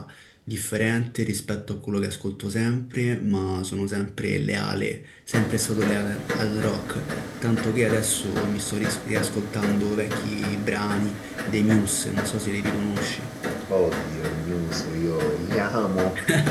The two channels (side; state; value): both; identical; correlation 1.00